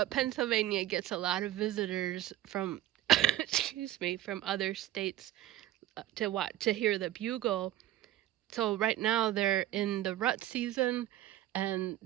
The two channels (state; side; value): quieter; left; 13.6 dB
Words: Pennsylvania gets a lot of visitors from, excuse me, from other states to hear the bugle. So right now they're in the rut season and